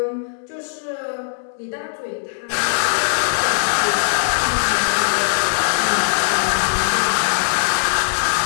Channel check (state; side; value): silent; right; digital silence